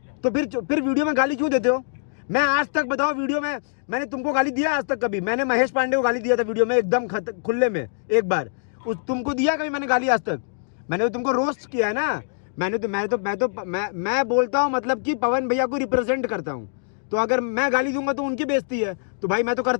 तो फिर वीडियो में गाली क्यों देते हो? मैं आज तक बताओ, वीडियो में मैंने तुमको गाली दिया आज तक कभी? मैंने महेश पांडे को गाली दिया था वीडियो में एकदम खुले में एक बार, तुमको दिया कभी मैंने गाली आज तक? मैंने तो तुमको रोस्ट किया है ना। मैं बोलता हूँ मतलब कि पवन भैया को रिप्रेजेंट करता हूँ, तो अगर मैं गाली दूंगा तो उनकी बेइज्जती है, तो भाई मैं तो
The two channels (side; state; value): right; silent; digital silence